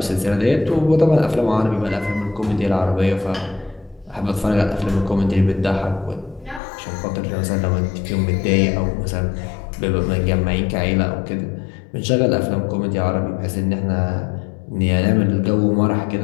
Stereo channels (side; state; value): right; drops out; at 6.6 s